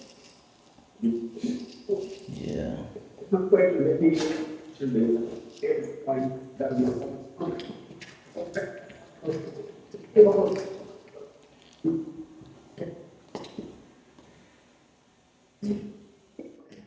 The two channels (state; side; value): identical; both; correlation 1.00